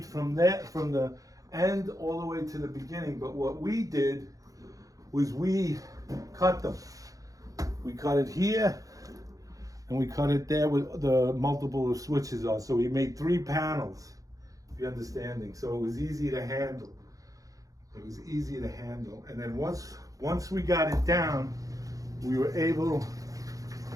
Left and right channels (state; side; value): late; left; 0.17 ms